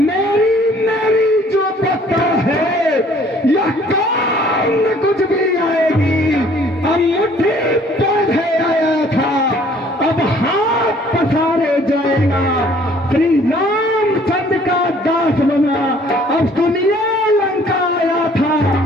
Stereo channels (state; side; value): normal; both; correlation 0.57